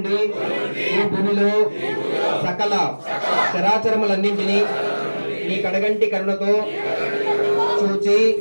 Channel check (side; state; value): both; inverted; correlation -1.00